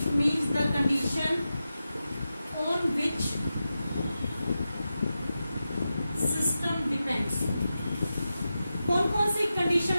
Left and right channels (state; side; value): inverted; both; correlation -0.91